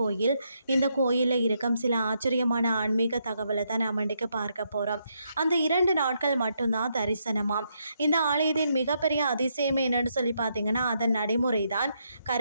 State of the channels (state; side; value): inverted; both; correlation -0.78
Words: இந்த கோயிலில் இருக்கும் சில ஆச்சரியமான ஆன்மீக தகவலை தான் நாம் இன்றைக்கு பார்க்க போகிறோம். அந்த 2 நாட்கள் மட்டும்தான் தரிசனமாம். இந்த ஆலயத்தின் மிகப்பெரிய அதிசயம் என்னன்னு சொல்லி பார்த்தீங்கன்னா அதன் நடைமுறை தான்.